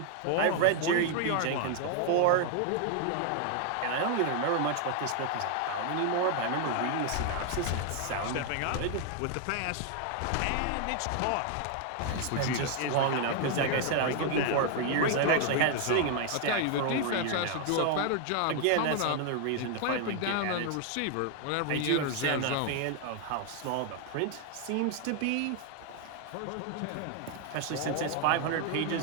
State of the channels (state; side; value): different; both; correlation 0.00